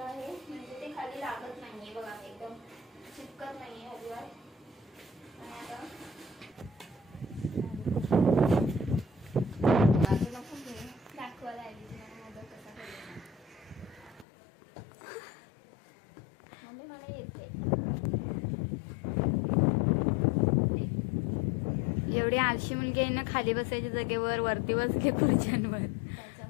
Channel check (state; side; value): drops out; right; at 14.2 s